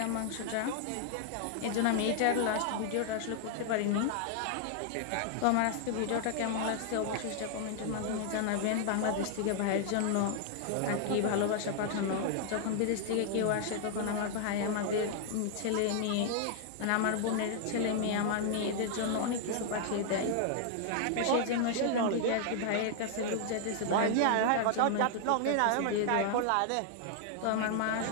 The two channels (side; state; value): both; different; correlation 0.00